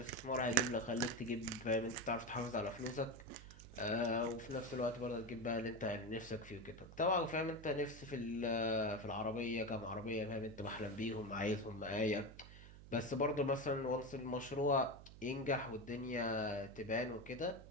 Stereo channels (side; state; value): right; noise; hum, 16 dB below the sound